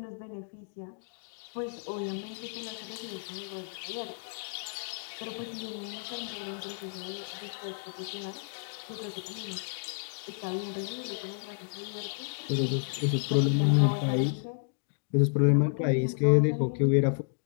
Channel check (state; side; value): silent; right; digital silence